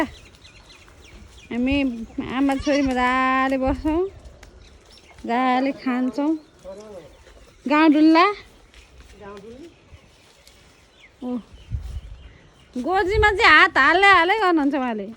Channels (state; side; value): identical; both; correlation 1.00